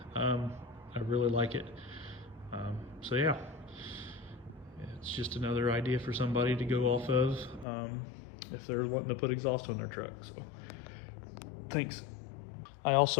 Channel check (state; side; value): drops out; right; at 7.7 s